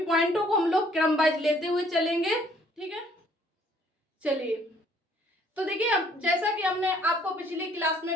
पॉइंटों को हम लोग क्रम वाइज लेते हुए चलेंगे। ठीक है, चलिए। तो देखिए, अब जैसा कि हमने आपको पिछली क्लास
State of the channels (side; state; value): both; normal; correlation 0.61